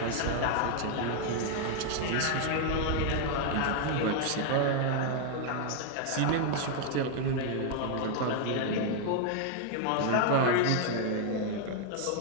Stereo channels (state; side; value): different; both; correlation 0.00